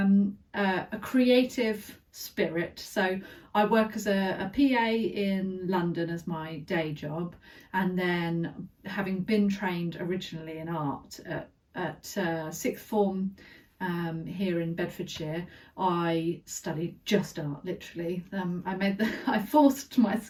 a creative spirit, so I work as a PA in London as my day job, and then having been trained originally in art at sixth form here in Bedfordshire, I studied just art, literally. I forced my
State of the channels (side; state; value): both; identical; correlation 1.00